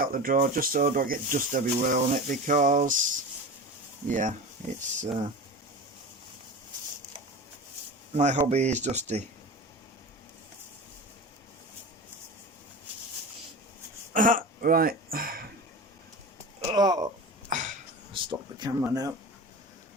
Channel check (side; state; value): both; normal; correlation 0.30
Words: the drawer, just so I don't get dust everywhere on it, because, yeah, it's, my hobby is dusty. Right, oh, stop the camera now.